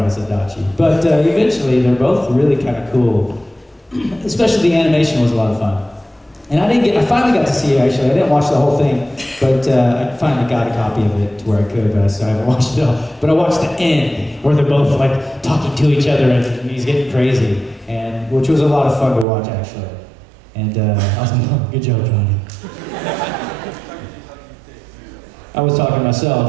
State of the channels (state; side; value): drops out; left; at 19.2 s